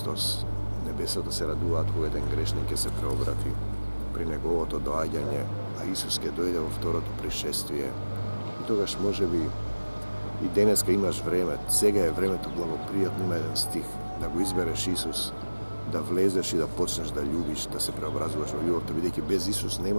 Небесата се радуваат кога еден грешник ќе се преобрати при неговото доаѓање, а Исус ќе дојде во второто пришествие. И тогаш можеби и денеска имаш време, сега е времето благопријатно, има еден стих, да го избереш Исус, да влезеш и да почнеш да љубиш, да се преобразуваш во љубовта, бидејќи без Исус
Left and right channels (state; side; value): inverted; both; correlation -1.00